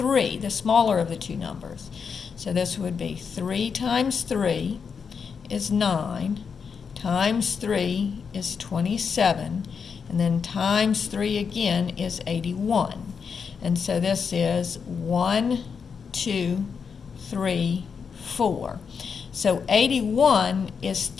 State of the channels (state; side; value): quieter; right; 6.1 dB